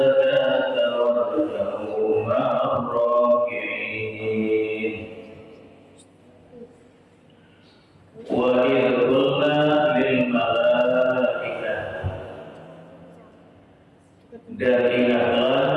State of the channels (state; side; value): identical; both; correlation 1.00